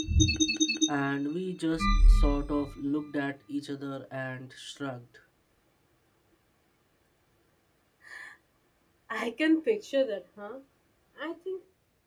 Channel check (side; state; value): both; identical; correlation 1.00